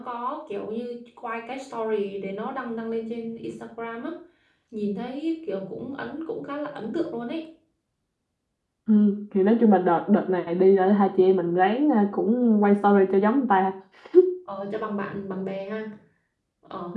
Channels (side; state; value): both; identical; correlation 1.00